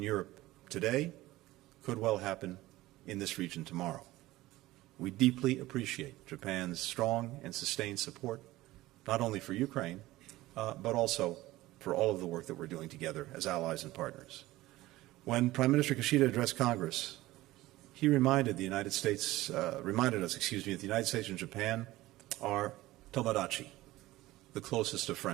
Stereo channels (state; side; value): quieter; left; 17.6 dB